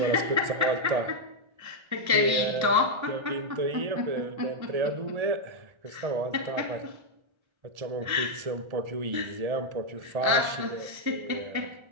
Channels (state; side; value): late; left; 1.3 ms